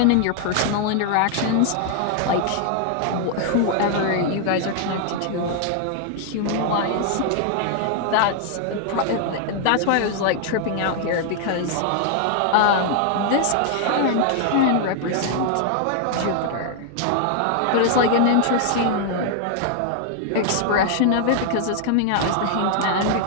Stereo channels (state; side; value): different; both; correlation 0.00